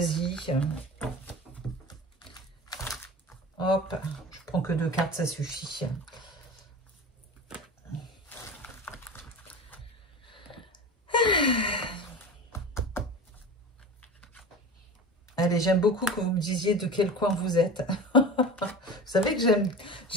Hop, je prends que 2 cartes, ça suffit. Allez, j'aime beaucoup que vous me disiez de quel coin vous êtes. Vous savez que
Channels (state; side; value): normal; both; correlation 0.32